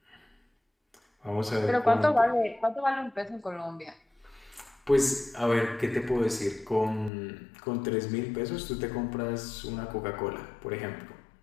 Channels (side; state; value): right; drops out; at 7.1 s